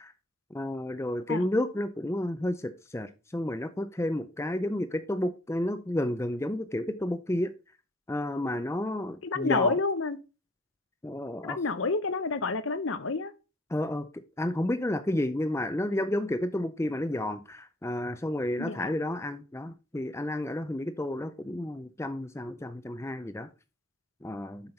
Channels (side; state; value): both; normal; correlation 0.60